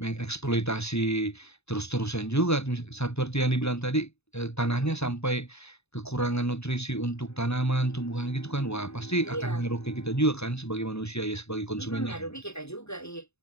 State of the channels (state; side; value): late; right; 0.80 ms